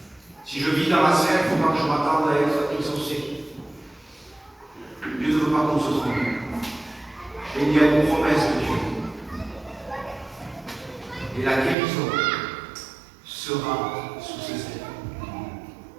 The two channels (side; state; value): left; drops out; at 11.8 s